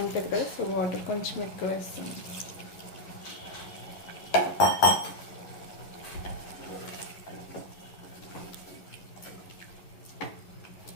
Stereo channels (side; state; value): right; late; 11 ms